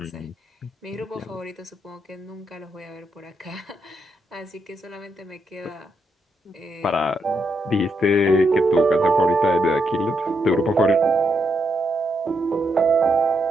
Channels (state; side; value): normal; both; correlation 0.80